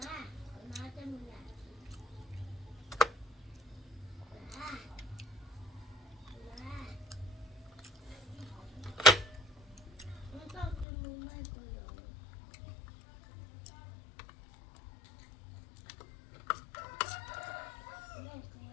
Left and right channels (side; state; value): right; drops out; at 10.9 s